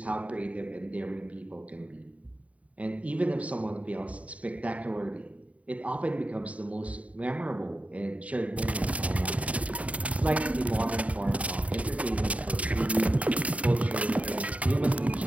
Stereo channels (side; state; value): left; late; 0.067 ms